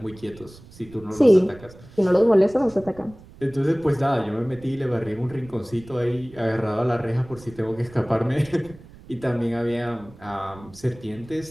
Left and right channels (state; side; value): noise; right; rumble, 21 dB below the sound